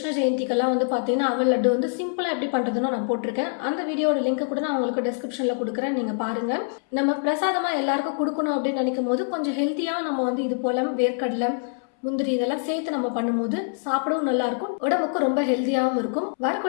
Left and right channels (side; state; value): right; silent; 62 dB below the other